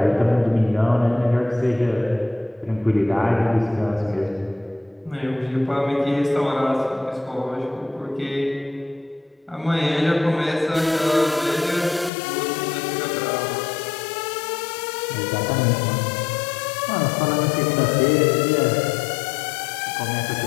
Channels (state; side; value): drops out; right; at 12.1 s